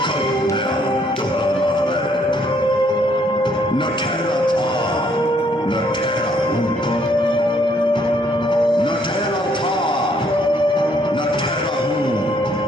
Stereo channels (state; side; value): normal; both; correlation 0.67